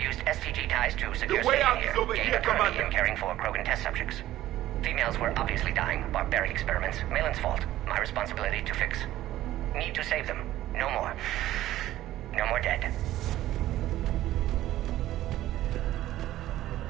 STG ties to secure The way out here. is over here, Commander. Commander. Caring for Krogan test subjects. Females were obviously dying. Barbaric experiments. Malin's fault. My responsibility to fix. Need to save them. No more. No more dead.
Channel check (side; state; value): left; quieter; 14.3 dB